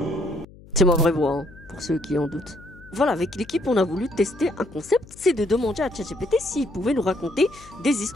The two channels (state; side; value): noise; left; hum, 21 dB below the sound